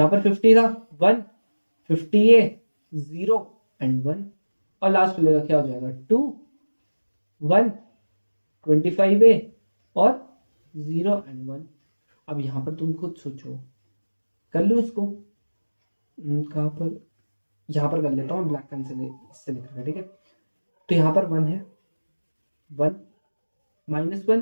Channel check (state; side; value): inverted; both; correlation -1.00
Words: पर 50 था 1 50a 0 एंड 1 और लास्ट मिलेगा क्या हो जाएगा 2 1 25a और 0 एंड 1। अब यहाँ पर तुम खुद सोचो, कर लो इसको, कहाँ पर यहाँ पर कर लेता हूँ ब्लैक पेन से इससे लिख रहा है, ठीक है। तो यहाँ पर 1 है 1